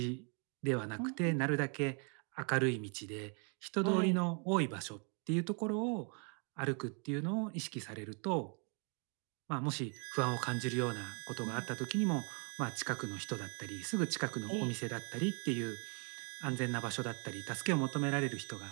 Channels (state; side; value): quieter; left; 38.5 dB